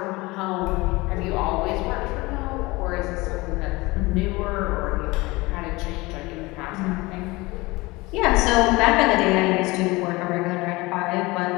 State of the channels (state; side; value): quieter; right; 22.3 dB